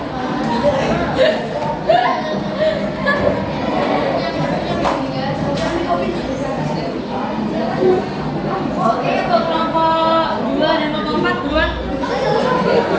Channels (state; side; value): identical; both; correlation 1.00